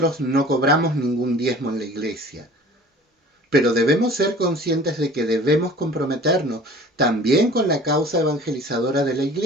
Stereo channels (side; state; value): both; normal; correlation 0.46